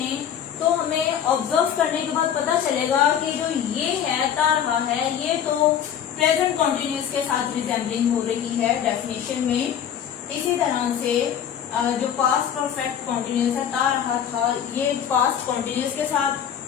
तो हमें ऑब्जर्व करने के बाद पता चलेगा कि जो ये है ता रहा है, ये तो प्रेजेंट कॉन्टिन्यूस के साथ रिजेंबलिंग हो रही है डेफिनेशन में। इसी तरह से जो पास्ट परफेक्ट कॉन्टिन्यूस है ता रहा था, ये पास्ट कॉन्टिन्यूस के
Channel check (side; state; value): right; quieter; 9.0 dB